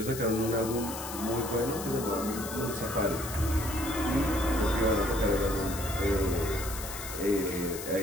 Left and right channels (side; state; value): left; noise; hiss, 9 dB below the sound